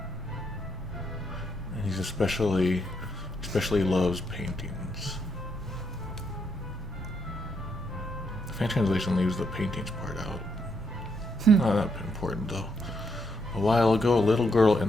And he's especially loves paintings. The fan translation leaves the paintings part out. Not that important though. A while ago, a little girl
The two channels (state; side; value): normal; both; correlation 0.77